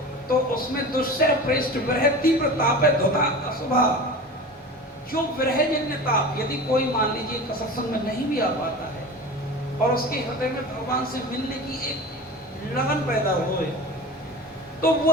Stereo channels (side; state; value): both; normal; correlation 0.33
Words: तो उसमें दुस्सह प्रेष्ठ विरह तीव्र ताप है धुता अशुभा। जो विरहजन्य ताप, यदि कोई मान लीजिए सत्संग में नहीं भी आ पाता है और उसके हृदय में भगवान से मिलने की एक लगन पैदा होए, तो